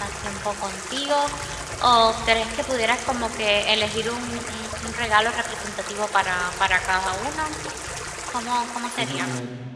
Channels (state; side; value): identical; both; correlation 1.00